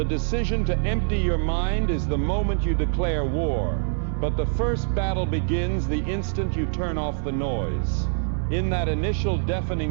decision to empty your mind is the moment you declare war, but the first battle begins the instant you turn off the noise. In that initial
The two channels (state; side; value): silent; left; 62 dB below the other